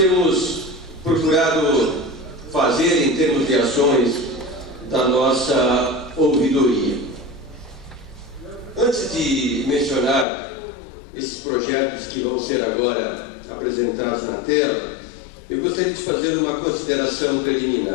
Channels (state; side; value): drops out; right; at 10.2 s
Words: procurado fazer em termos de ações da nossa ouvidoria. Antes de mencionar esses projetos que vão ser agora apresentados na tela, eu gostaria de fazer uma consideração